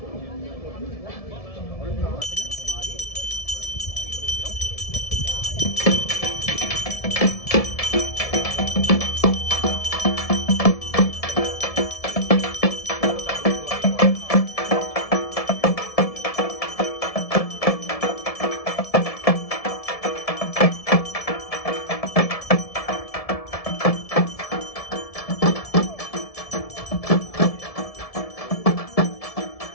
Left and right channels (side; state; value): right; late; 1.7 ms